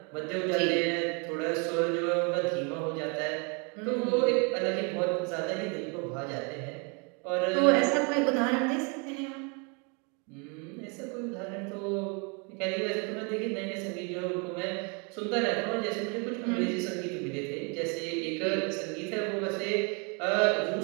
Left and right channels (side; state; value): left; quieter; 33.9 dB